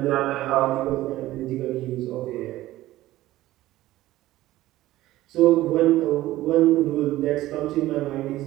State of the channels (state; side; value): quieter; left; 16.0 dB